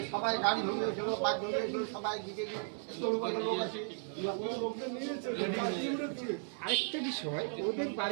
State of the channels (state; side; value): silent; left; 54 dB below the other